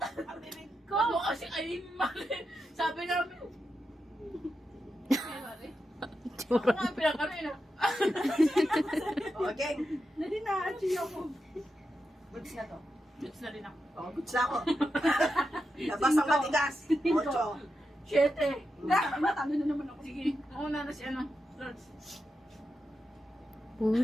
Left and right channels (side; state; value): both; normal; correlation 0.88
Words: Ako kasi ay mali. Sabi namin. Ako nga pinakano yun. Okay. Nadi na, achieve ako. Goods na to. Goods na rin ako. Oh, goods na ako. Labas ang matigas. 8. 7. Natalo na naman ako. Sige, mauna na si ano. Lords. Uy,